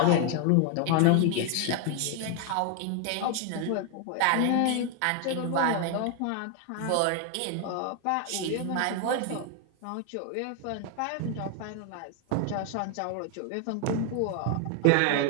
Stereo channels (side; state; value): both; different; correlation 0.01